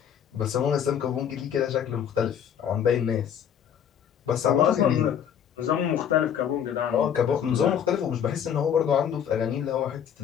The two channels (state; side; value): quieter; right; 8.7 dB